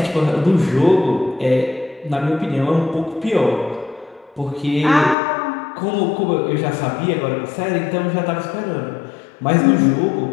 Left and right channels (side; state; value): right; drops out; at 5.2 s